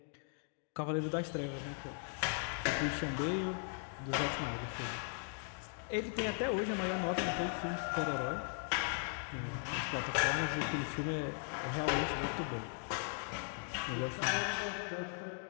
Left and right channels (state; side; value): silent; right; 52 dB below the other